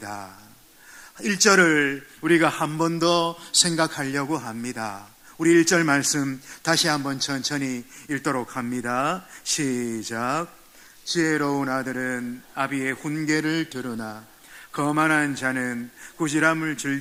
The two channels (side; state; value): both; identical; correlation 1.00